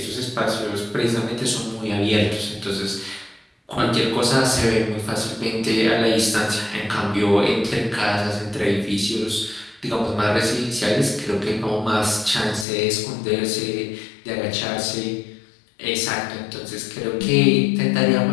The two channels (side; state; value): right; drops out; at 12.7 s